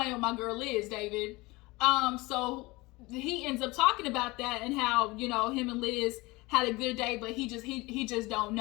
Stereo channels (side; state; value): right; quieter; 22.7 dB